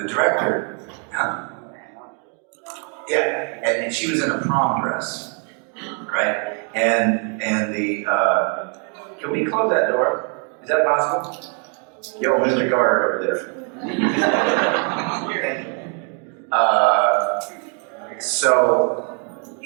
director, and she was in a prom dress. Right? And the, can we close that door? Is that possible? Yo, Mr. Guard over there.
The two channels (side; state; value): left; quieter; 39.7 dB